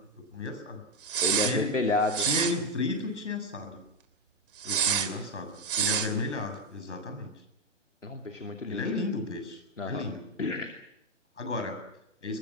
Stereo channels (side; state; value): both; normal; correlation 0.07